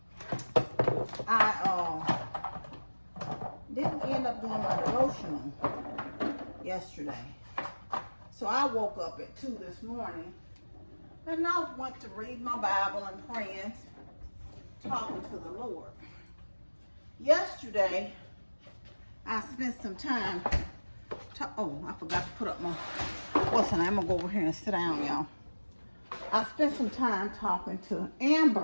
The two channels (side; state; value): both; inverted; correlation -1.00